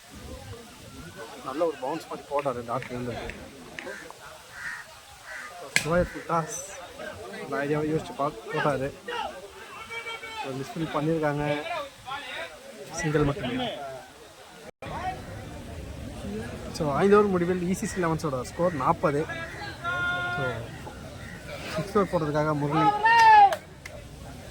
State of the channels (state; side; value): identical; both; correlation 1.00